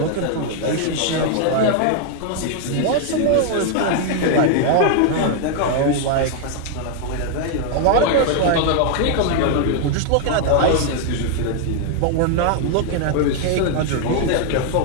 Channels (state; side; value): different; both; correlation 0.00